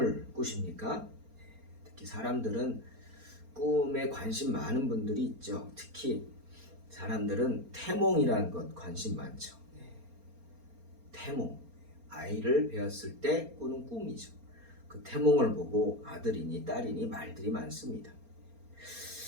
꾸십니까? 특히 사람들은 꿈에 관심 많은 분들이 있죠. 특히 사람들은 태몽이라는 것 관심 많죠. 태몽, 아이를 배웠을 때 꾸는 꿈이죠. 그 태몽을 보고 아들이니 딸이니 말들이 많습니다.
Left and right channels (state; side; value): late; left; 4.3 ms